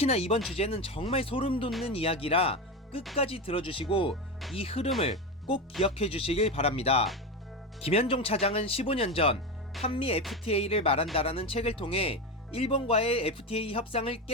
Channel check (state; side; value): normal; both; correlation 0.18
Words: 이번 주제는 정말 소름 돋는 이야기라 끝까지 들어주시고 이 흐름을 꼭 기억해 주시길 바랍니다. 김현종 차장은 15년 전 한미 FTA를 말한다라는 책을 통해 일본과의 FTA 협상을